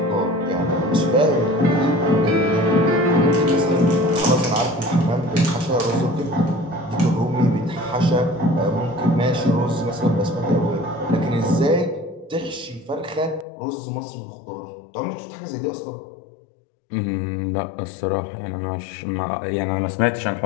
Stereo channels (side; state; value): right; drops out; at 13.5 s